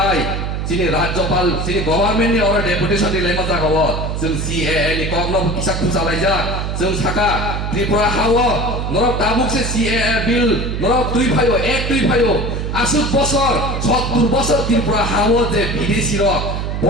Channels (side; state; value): right; noise; hum, 3 dB below the sound